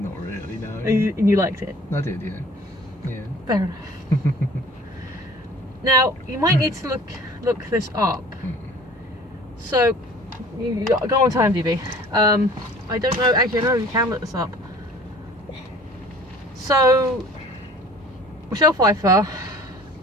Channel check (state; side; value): normal; both; correlation 0.48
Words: really, no. And you liked it. I did, yeah. Yeah. Fair enough. Now you might need to look this up. So you go on to IMDb. I don't know. Actually, I know you can look this up. So Michelle Pfeiffer,